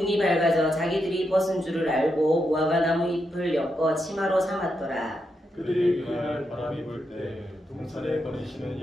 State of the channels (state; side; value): normal; both; correlation 0.84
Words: 밝아져 자기들이 벗은 줄을 알고 무화과 나무 잎을 엮어 치마로 삼았더라. 그들이 그날 바람이 불 때 동산에 거니시는